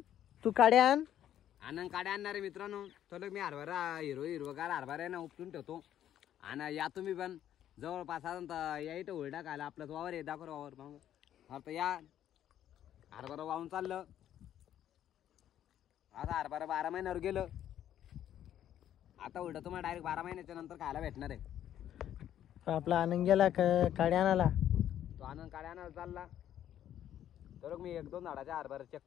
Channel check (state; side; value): quieter; right; 11.0 dB